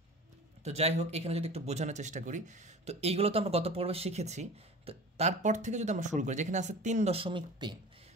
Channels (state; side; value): normal; both; correlation 0.38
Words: তো যাই হোক, এখানে যদি একটু বোঝানোর চেষ্টা করি, তো এইগুলো তো আমরা গত পর্বে শিখেছি। তো তারপর থেকে যদি আমরা শুরু করি, যেখানে আছে 3.3।